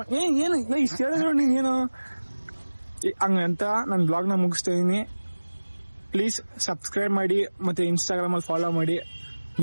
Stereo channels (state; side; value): inverted; both; correlation -1.00